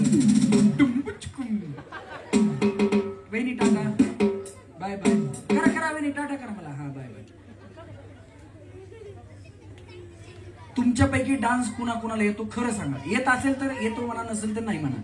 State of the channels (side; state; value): both; identical; correlation 1.00